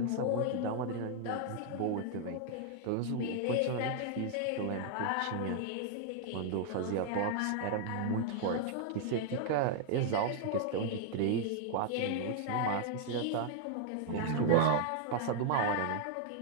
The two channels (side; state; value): both; different; correlation 0.00